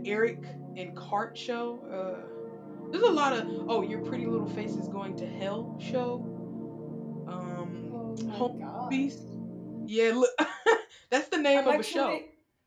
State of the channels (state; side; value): identical; both; correlation 1.00